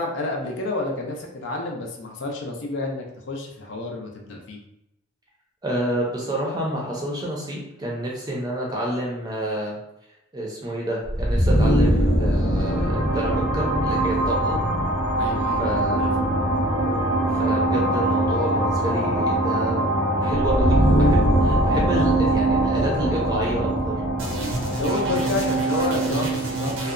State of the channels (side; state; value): both; normal; correlation 0.49